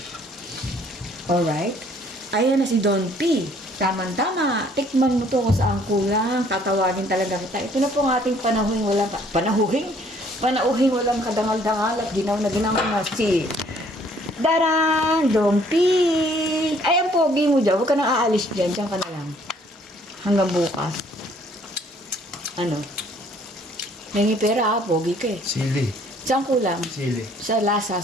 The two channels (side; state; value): both; normal; correlation 0.60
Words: Alright? Ayan na si Don P. Tama-tama. Tikman mo to kung saan kulang. Tatawagin talaga kita. Ito na po ang ating panauhing walang kadangal-dangal at ginaw na na si Darang Dompik. Ay, ang pogi mo dyan. Huwag ka nang aalis dyan. Diyan ka na lang. Hanggang bukas. Ano? Nangi pera pogi ka eh. Sili. Saan kulang? Sili. Sa lasa,